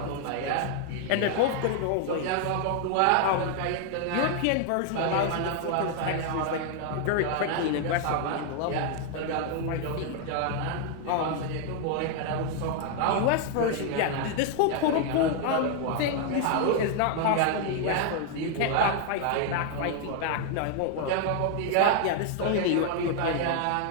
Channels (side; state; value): both; different; correlation 0.00